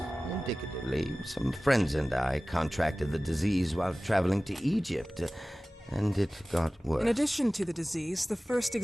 indicatively. Some friends and I contracted the disease while traveling to Egypt, and it got worse. In addition to the disease, the first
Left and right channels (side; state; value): both; normal; correlation 0.97